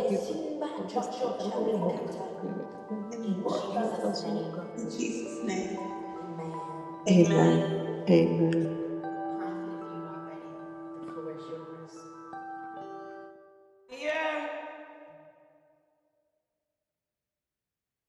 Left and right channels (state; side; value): identical; both; correlation 1.00